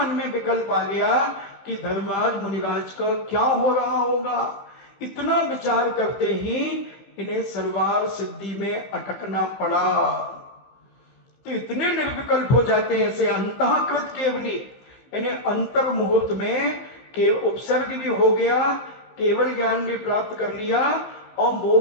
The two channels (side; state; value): right; late; 15 ms